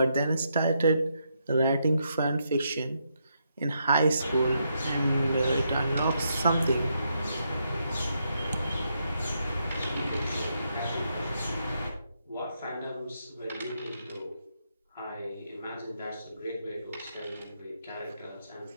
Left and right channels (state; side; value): inverted; both; correlation -0.79